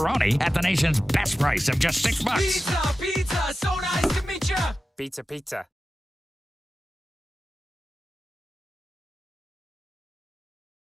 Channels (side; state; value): both; normal; correlation 0.93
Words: at the nation's best price of just $6. Pizza, pizza, so nice to meet you. Pizza, pizza.